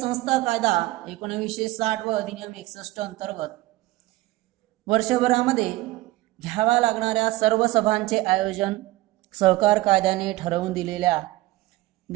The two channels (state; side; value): quieter; left; 18.2 dB